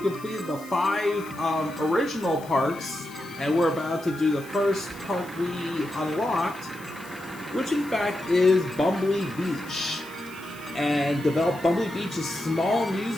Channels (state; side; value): noise; left; hiss, 21 dB below the sound